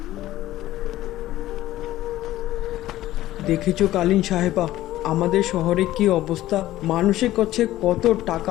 দেখেছো কালীন সাহেবা, আমাদের শহরে কি অবস্থা? মানুষের কাছে কত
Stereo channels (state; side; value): quieter; right; 15.0 dB